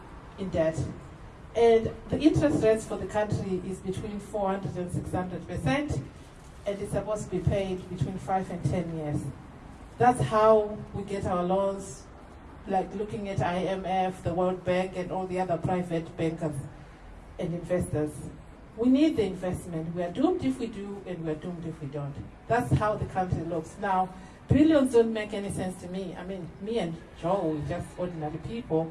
in debt. And the interest rates for the country is between 400 and 600%, and it's supposed to be paid between 5 and 10 years. That's how we get our loans, like looking at IMF, the World Bank, and all the other private bankers and investors. We need the investment. We are doomed if we do, and we are doomed if we don't. That's how the country looks. Now, billions don't make any sense to me. I mean, me and Joe, we're just ordinary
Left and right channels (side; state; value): both; identical; correlation 1.00